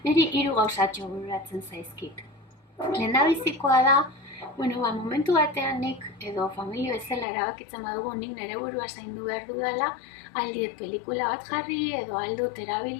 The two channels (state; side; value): drops out; right; at 7.2 s